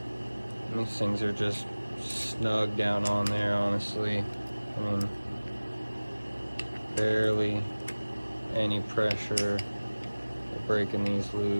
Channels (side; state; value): both; inverted; correlation -1.00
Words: And these things are just snug down on there, honestly. I mean, barely any pressure or breaking these